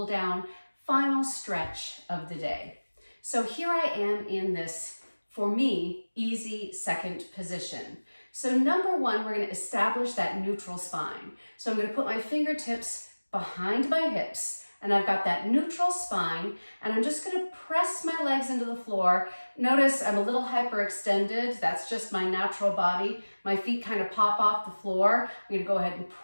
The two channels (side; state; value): both; inverted; correlation -1.00